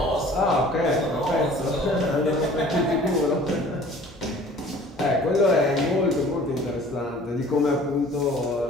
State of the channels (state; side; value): normal; both; correlation 0.49